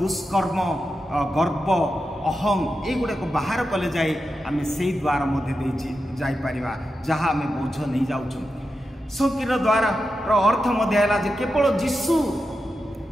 गर्व अहम युगुड़ा को बाहर कले जाए आम से द्वार मध्य जापर जहाँ आम बोझ नहीं जाऊँ। संकीर्ण द्वार अर्थ मध्य है केवल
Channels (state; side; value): normal; both; correlation 0.89